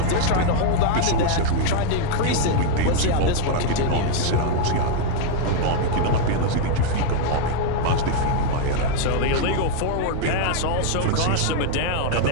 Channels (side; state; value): both; different; correlation 0.00